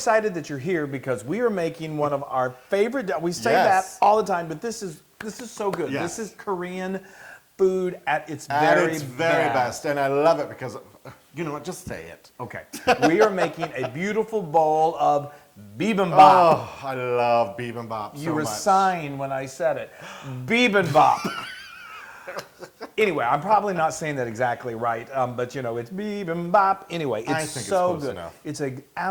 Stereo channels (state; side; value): identical; both; correlation 1.00